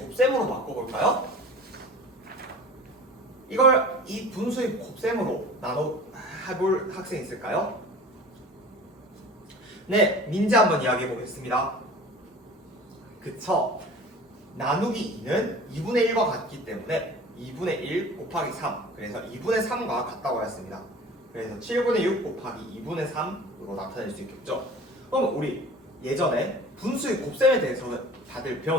바꿔볼까요? 이걸 이 분수의 곱셈으로 해볼 학생 있을까요? 네, 민지 한번 이야기해 보겠습니다. 그쵸? 나누기 2는 2분의 1과 같기 때문에 2분의 1 곱하기 3, 그래서 2분의 3과 같다고 하였습니다. 그래서 7분의 6 곱하기 2분의 3으로 나타낼 수 있겠죠? 그럼 우리 예전에 분수의 곱셈에 대해서 다들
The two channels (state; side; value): normal; both; correlation 0.41